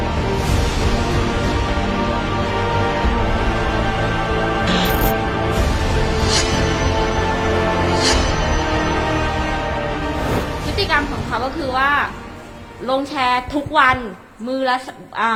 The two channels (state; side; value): identical; both; correlation 1.00